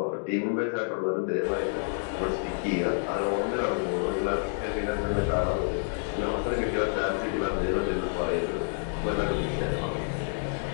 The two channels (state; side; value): silent; right; 59 dB below the other